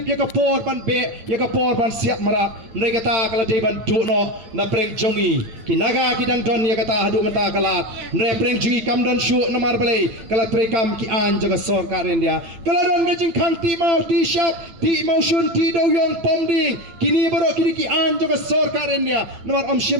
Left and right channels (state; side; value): late; left; 8.9 ms